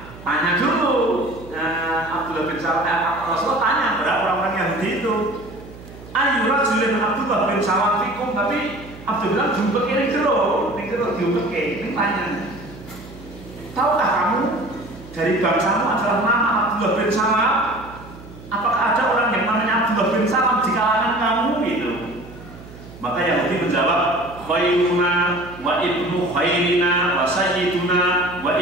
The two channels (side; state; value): right; noise; hum, 17 dB below the sound